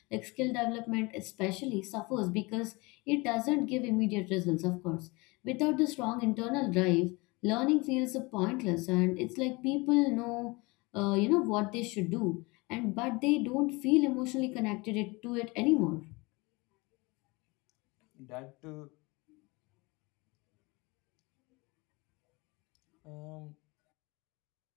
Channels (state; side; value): quieter; right; 25.3 dB